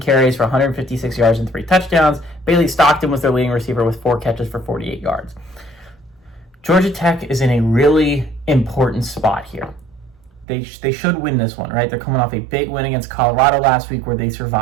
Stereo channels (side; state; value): left; drops out; at 10.5 s